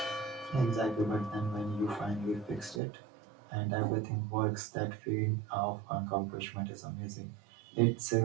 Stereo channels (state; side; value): drops out; left; at 2.8 s